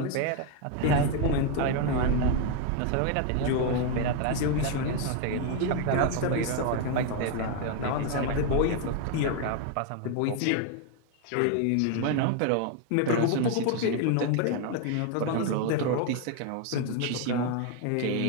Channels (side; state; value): both; different; correlation 0.01